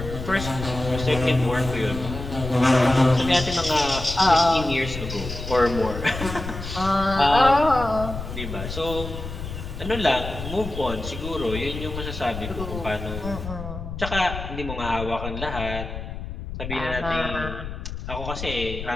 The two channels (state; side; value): noise; left; rumble, 8 dB below the sound